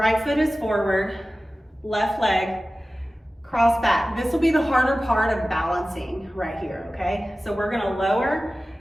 foot is forward, left leg, cross back. This will be the harder part of balancing right here, okay? So we're gonna lower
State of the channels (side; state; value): both; normal; correlation 0.96